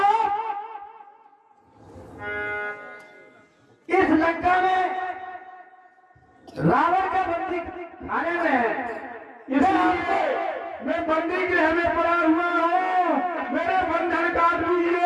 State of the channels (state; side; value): identical; both; correlation 1.00